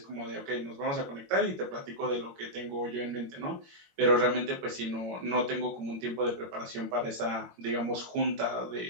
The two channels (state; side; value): late; left; 22 ms